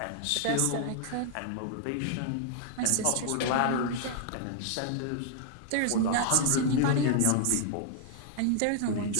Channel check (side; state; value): both; different; correlation -0.01